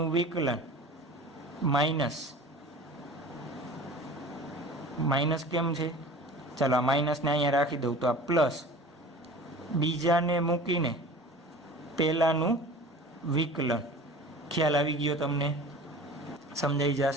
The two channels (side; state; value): both; normal; correlation 0.40